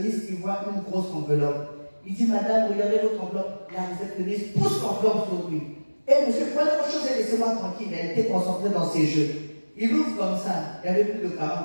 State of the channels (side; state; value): both; inverted; correlation -1.00